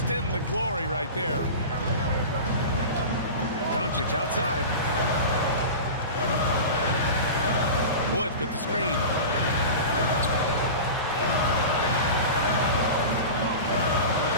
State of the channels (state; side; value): inverted; both; correlation -0.30